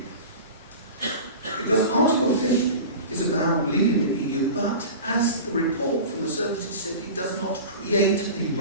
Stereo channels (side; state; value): both; inverted; correlation -0.33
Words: Because Article 50 is about leaving the EU, but as the report from the services said, it does not create a